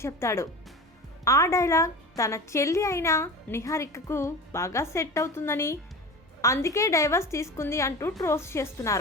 చెప్తాడు. ఆ డైలాగ్ తన చెల్లి అయిన నిహారికకు బాగా సెట్ అవుతుందని, అందుకే డైవర్స్ తీసుకుంది అంటూ ట్రోల్స్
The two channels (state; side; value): normal; both; correlation 0.32